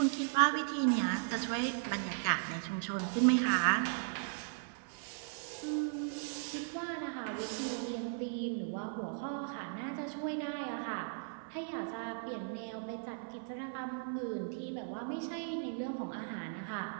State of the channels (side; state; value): left; silent; 53 dB below the other